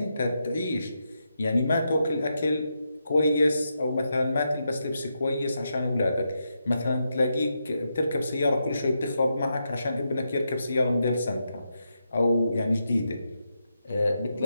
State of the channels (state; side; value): inverted; both; correlation -0.84